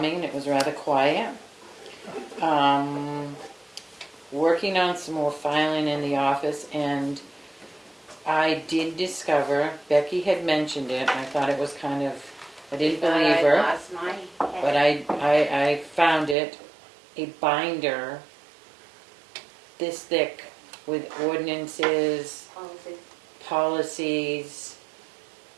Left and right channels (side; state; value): left; drops out; at 16.4 s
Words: it was rather quiet. Working on some more filing in the office, and I did discover, Becky had mentioned it, I thought it was kind of, I didn't believe her. I lost my head. But I found it, a binder this thick with ordinances, policies.